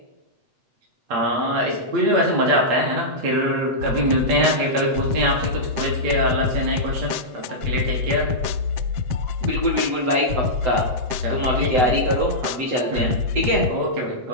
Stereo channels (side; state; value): left; late; 7.7 ms